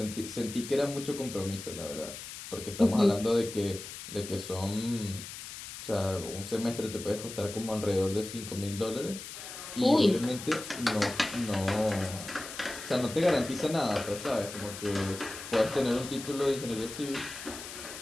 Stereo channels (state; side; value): noise; left; hiss, 11 dB below the sound